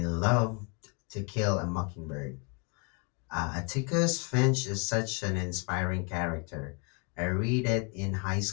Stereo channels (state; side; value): quieter; right; 34.2 dB